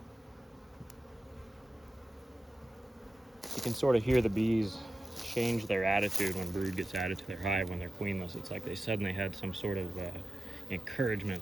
You can sort of hear the bees change their attitude when brood gets added to their hive when they're queenless. It's like they suddenly had some sort of encouragement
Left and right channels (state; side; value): normal; both; correlation 0.93